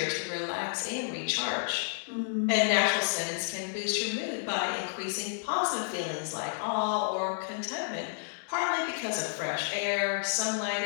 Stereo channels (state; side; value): silent; right; digital silence